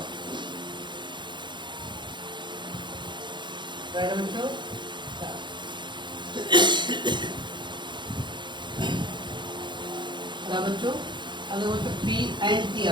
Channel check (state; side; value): late; left; 0.22 ms